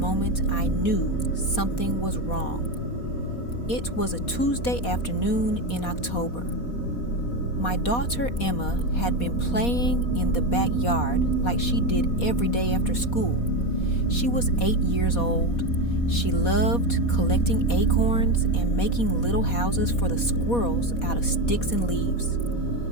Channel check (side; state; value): right; late; 4.2 ms